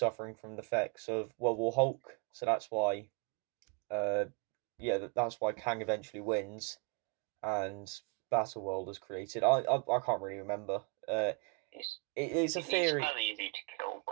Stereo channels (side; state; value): left; quieter; 32.3 dB